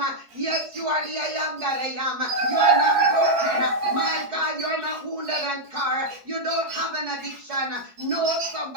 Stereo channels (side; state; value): left; late; 4.7 ms